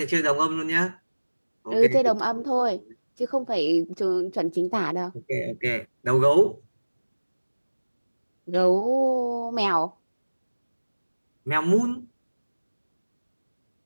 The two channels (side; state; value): both; inverted; correlation -1.00